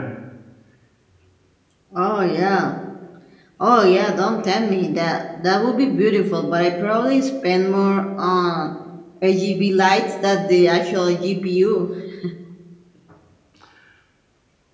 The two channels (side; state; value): both; identical; correlation 1.00